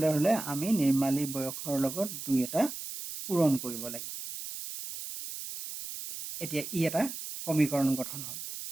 হ'লে আমি নিৰ্মালীৰ বয়সৰ লগত দুই এটা পূৰণ কৰিব লাগিব এতিয়া ই এটা সমীকৰণ গঠন হ'ল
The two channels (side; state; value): right; noise; hiss, 8 dB below the sound